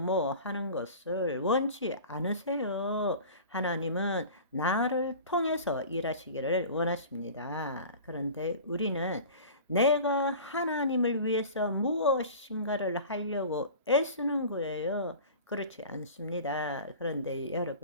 하는 것을 원치 않으세요. 하나님은 나를 통해서 일하시기를 원하십니다. 그런데 우리는 내가 하나님을 위해서 무엇인가를 하려고 애쓰는 거예요. 그렇지 않습니다. 그런데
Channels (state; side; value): inverted; both; correlation -0.39